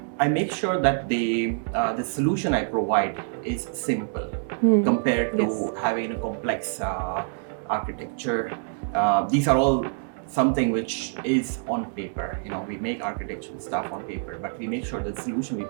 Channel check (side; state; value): left; silent; digital silence